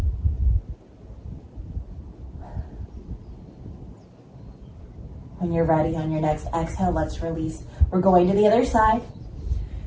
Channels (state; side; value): identical; both; correlation 1.00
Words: When you're ready on your next exhale, let's release. We're going to the other side.